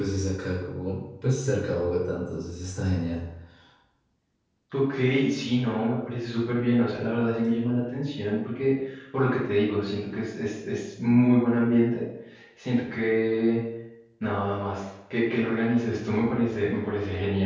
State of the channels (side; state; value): both; identical; correlation 1.00